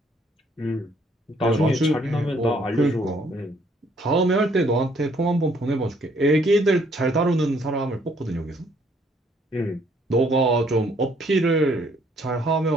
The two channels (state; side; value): normal; both; correlation 0.65